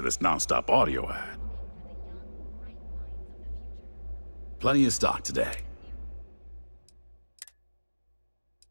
non-stop audio ad. Plenty of stock today.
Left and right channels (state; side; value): inverted; both; correlation -1.00